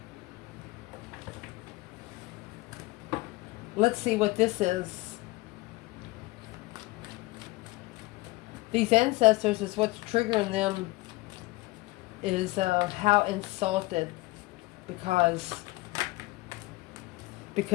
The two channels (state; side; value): quieter; right; 21.4 dB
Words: Let's see what this is. These ancestors is what's triggering them is how insulted because